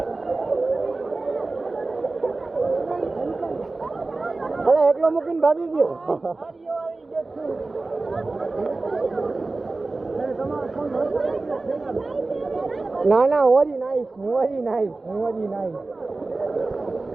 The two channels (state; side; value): quieter; left; 3.4 dB